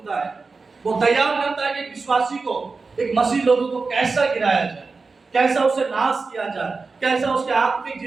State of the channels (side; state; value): left; quieter; 4.2 dB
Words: है, वो तैयार करता है कि विश्वासी को, एक मसीह लोगों को कैसा गिराया जाए, कैसा उसे नाश किया जाए, कैसा उसके आत्मिक